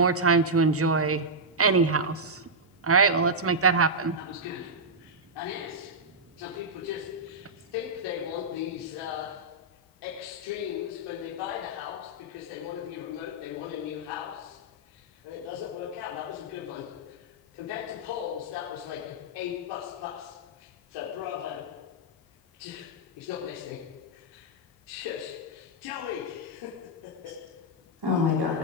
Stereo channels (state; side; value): normal; both; correlation -0.07